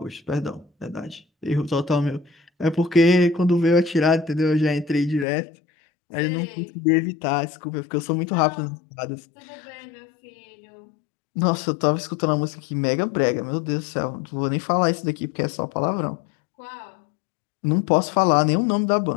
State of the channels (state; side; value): drops out; right; at 5.2 s